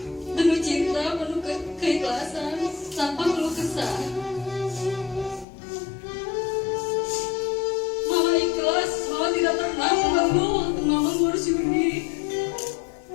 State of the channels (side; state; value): right; drops out; at 5.5 s